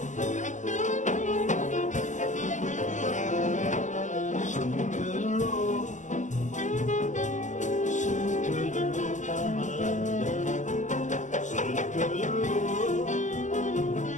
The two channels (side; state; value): right; late; 0.36 ms